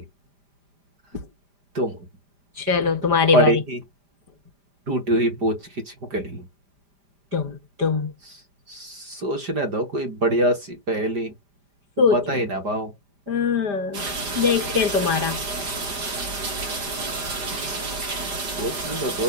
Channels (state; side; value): late; left; 5.0 ms